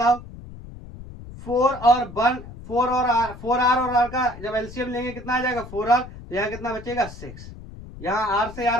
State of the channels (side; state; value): left; noise; rumble, 15 dB below the sound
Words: 4R और R का जब एलसीएम लेंगे कितना आ जाएगा? 4R। तो यहाँ कितना बचेगा? 6। यहाँ R से